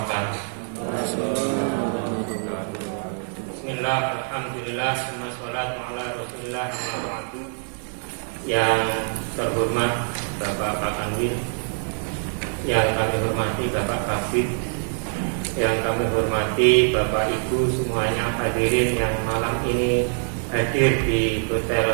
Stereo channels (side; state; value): left; silent; 56 dB below the other